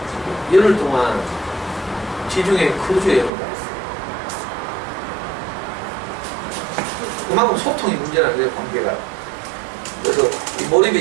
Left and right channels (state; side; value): drops out; left; at 3.3 s